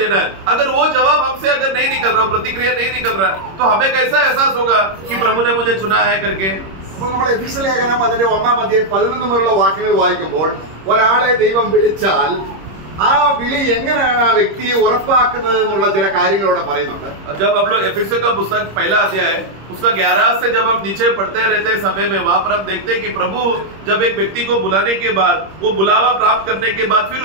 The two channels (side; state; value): left; late; 26 ms